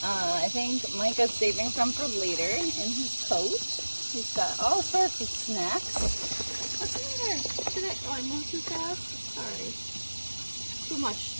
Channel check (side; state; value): both; inverted; correlation -1.00